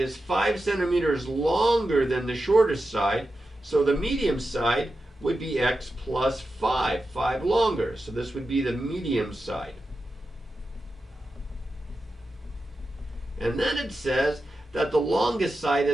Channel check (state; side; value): normal; both; correlation 0.91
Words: is 5 centimeters longer than the shortest side. So the medium side would be x plus 5 longer. So this would be the medium side. And then it says that the longest side